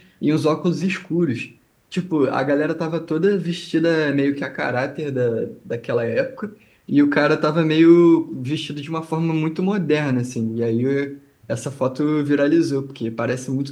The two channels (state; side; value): identical; both; correlation 1.00